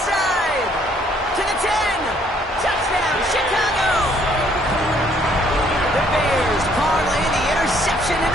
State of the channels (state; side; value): normal; both; correlation 0.64